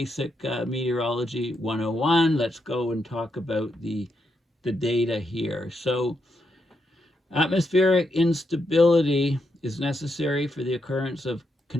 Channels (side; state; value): both; normal; correlation 0.81